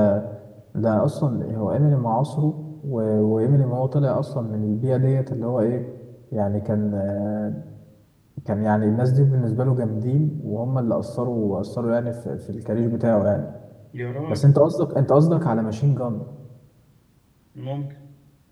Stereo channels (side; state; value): both; identical; correlation 1.00